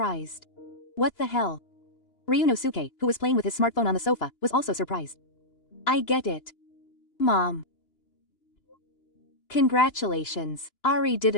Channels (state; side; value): late; right; 2.9 ms